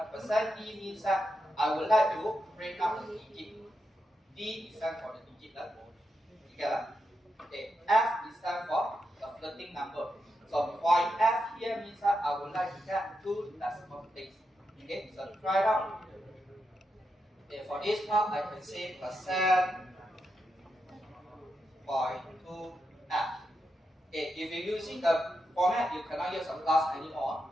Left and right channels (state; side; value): normal; both; correlation 0.86